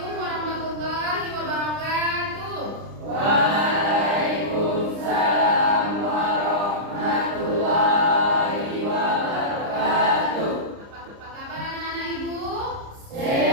warahmatullahi wabarakatuh. Waalaikumsalam warahmatullahi wabarakatuh. Apa kabar anak-anak ibu?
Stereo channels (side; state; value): left; late; 30 ms